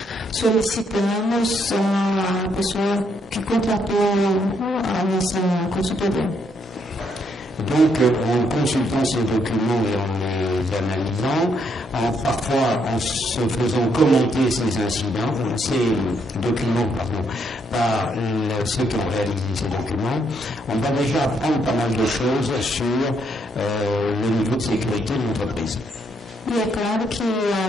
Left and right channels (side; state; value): both; normal; correlation 0.74